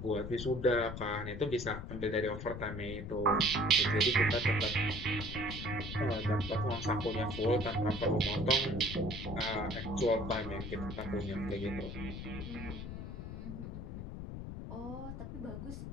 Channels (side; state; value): left; noise; rumble, 7 dB below the sound